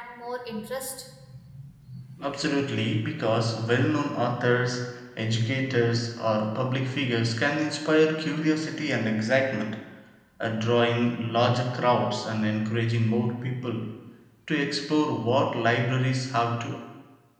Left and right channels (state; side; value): identical; both; correlation 1.00